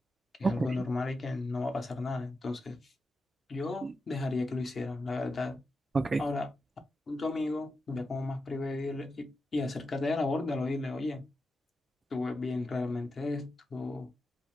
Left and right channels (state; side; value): normal; both; correlation 0.89